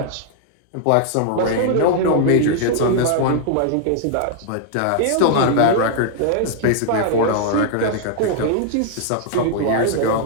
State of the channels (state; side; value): different; both; correlation 0.00